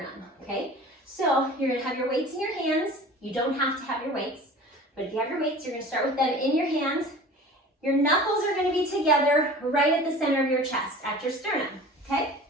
okay? So you're gonna have your weights in your hands. You don't have to have your weights, but if you have your weights, you're gonna start with them in your hands. Your knuckles are gonna be together right at the center of your chest, at your sternum, okay?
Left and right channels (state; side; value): normal; both; correlation 0.41